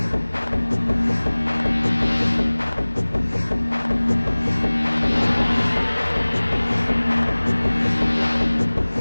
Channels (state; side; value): inverted; both; correlation -1.00